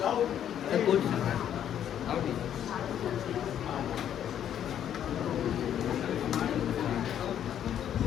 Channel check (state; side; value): quieter; right; 9.9 dB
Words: जाओ। क्वेश्चन आओ ठीक।